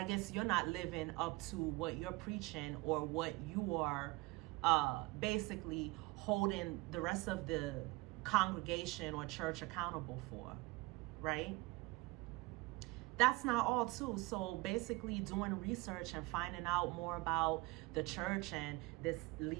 guess you're not living up to what you're preaching or what you are basically holding the rest of the congregation or church accountable for, right? That's not all too. So basically doing research and finding out more about the church and this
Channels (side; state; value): left; quieter; 22.9 dB